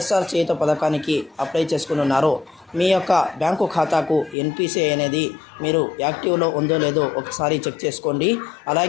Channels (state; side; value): drops out; right; at 4.4 s